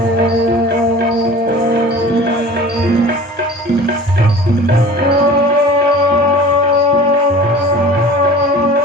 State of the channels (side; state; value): both; normal; correlation 0.42